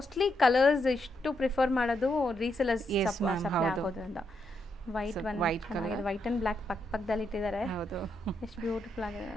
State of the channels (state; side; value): normal; both; correlation 0.80